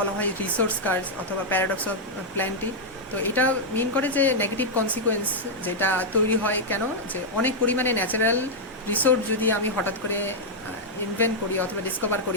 হয় রিসোর্স কার্স অথবা প্যারাডক্স অফ প্ল্যান্টি। তো এটা মিন করে যে নেগেটিভ কনসিকুয়েন্স যেটা তৈরি হয়, কেন যে অনেক পরিমাণে ন্যাচারাল রিসোর্স যদি আমি হঠাৎ করে ইনভেন্ট করি অথবা ডিসকভার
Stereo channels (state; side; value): normal; both; correlation -0.04